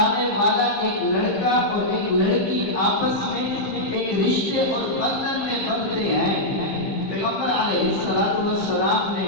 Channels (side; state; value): right; late; 15 ms